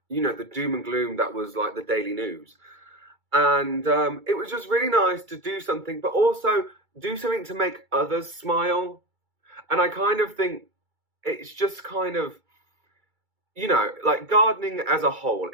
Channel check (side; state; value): left; late; 2.3 ms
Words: the doom and gloom that was like the daily news. And it was just really nice to do something, but also do something to make others smile. And I kind of think it's just kind of, like gardening as a whole